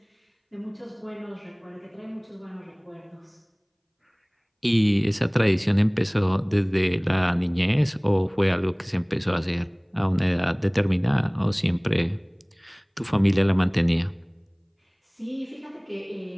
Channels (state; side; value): identical; both; correlation 1.00